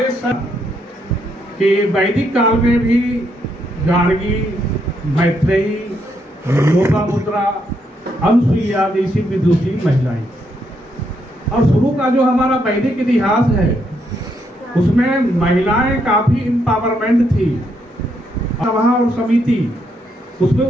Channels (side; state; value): both; normal; correlation 0.76